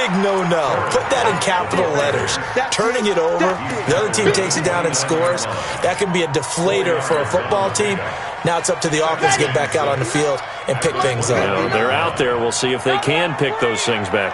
no-no. Put that in capital letters. Turning it over, the other team takes it down and scores. That can be a deflator for a football team. Now it's up to the offense to get back out on the field and pick things up. Well, they're out there. We'll see if they can pick those things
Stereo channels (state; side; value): identical; both; correlation 1.00